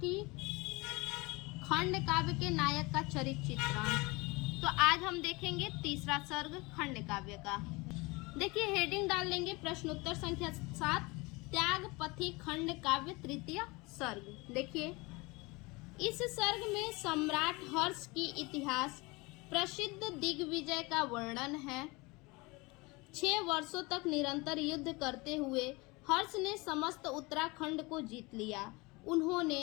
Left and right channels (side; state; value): right; quieter; 25.0 dB